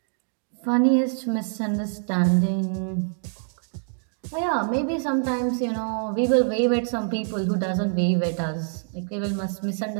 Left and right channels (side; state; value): left; silent; 62 dB below the other